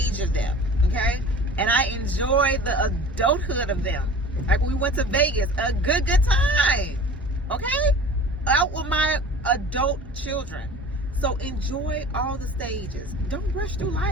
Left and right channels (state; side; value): normal; both; correlation 0.41